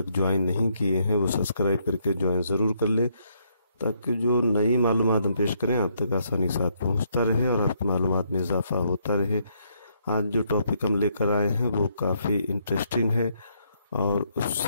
ज्वाइन नहीं किए हैं वो सब्सक्राइब करके ज्वाइन ज़रूर कर ले, ताकि जो नई मालूमात हम पेश करें आप तक आसानी के साथ पहुँचता रहे और आपकी मालूमात में इजाफा होता रहे। आज जो टॉपिक हम लेकर आए हैं वो काफ़ी इंटरेस्टिंग है और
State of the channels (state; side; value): inverted; both; correlation -0.73